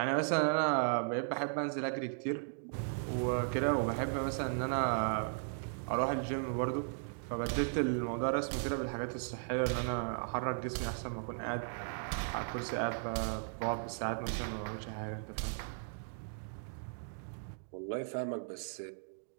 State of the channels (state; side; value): silent; left; digital silence